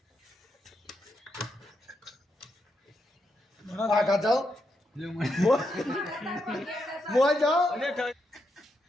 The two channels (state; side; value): normal; both; correlation 0.82